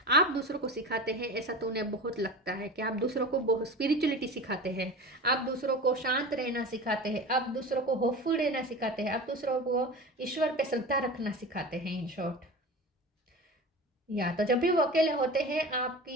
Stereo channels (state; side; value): normal; both; correlation 0.32